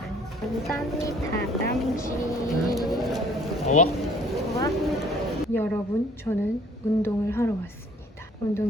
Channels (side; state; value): both; normal; correlation 0.56